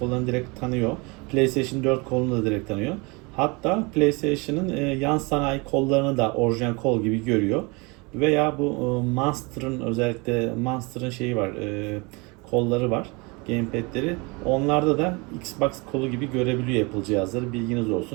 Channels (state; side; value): quieter; left; 27.9 dB